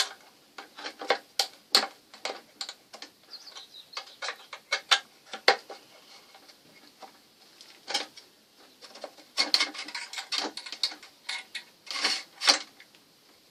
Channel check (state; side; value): identical; both; correlation 1.00